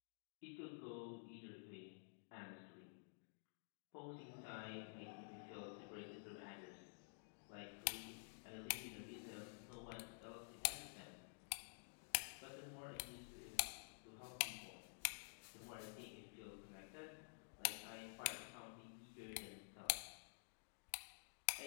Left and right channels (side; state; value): right; silent; digital silence